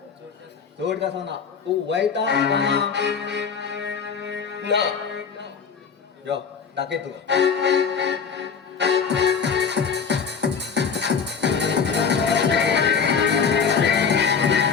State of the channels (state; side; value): quieter; right; 6.2 dB